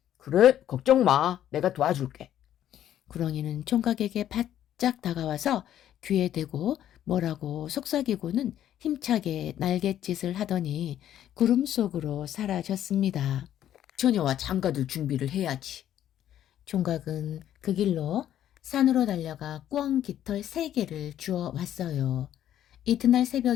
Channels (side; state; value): right; quieter; 11.3 dB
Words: 그래? 걱정 마. 내가 도와줄게. 구렁이는 총각에게 바짝 다가와서 귀에 대고 뭐라고 속삭이고는 힘차게 날갯짓을 하더니 구름 속으로 사라졌습니다. 처녀와 장가들 준비를 해야지. 총각은 그 길로 산으로 달려가 꿩 깃털 3개를 주워 왔어요. 이튿날